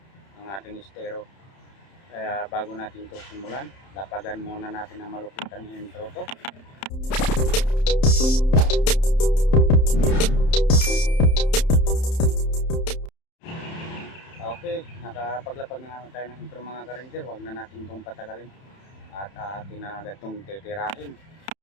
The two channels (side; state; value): right; late; 31 ms